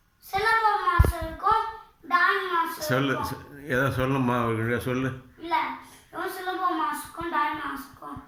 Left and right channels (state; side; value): identical; both; correlation 1.00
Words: சிலம்பம் மாஸ்டருக்கும் டான்ஸ் மாஸ்டர் சொல்லு, ஏதோ சொல்லுமா சொல்லு. இல்லை, சிலம்பம் மாஸ்டருக்கும் டான்ஸ் மாஸ்டருக்கும்